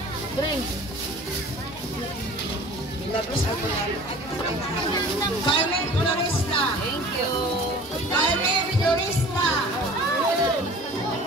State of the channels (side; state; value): both; normal; correlation 0.44